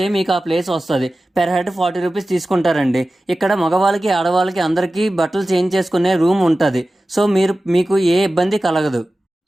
మీకు ఆ ప్లేస్ వస్తుంది. పెర్ హెడ్ 40 రూపీస్ తీసుకుంటారండి. ఇక్కడ మగవాళ్ళకి ఆడవాళ్ళకి అందరికీ బట్టలు చేంజ్ చేసుకునే రూమ్ ఉంటుంది. సో మీకు ఏ ఇబ్బంది కలగదు.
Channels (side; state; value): both; normal; correlation 0.95